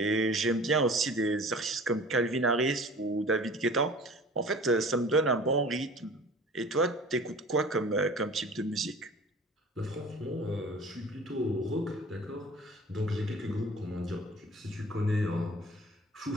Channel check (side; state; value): both; normal; correlation 0.43